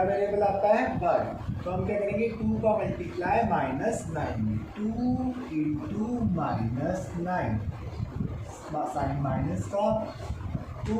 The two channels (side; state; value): both; identical; correlation 1.00